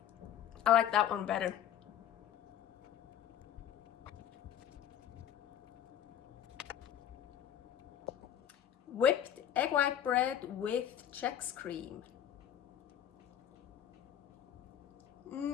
I like that one better. Whipped egg white bread with Chex cream.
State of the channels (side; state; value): right; quieter; 10.1 dB